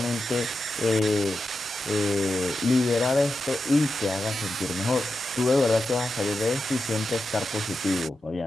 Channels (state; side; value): normal; both; correlation 0.89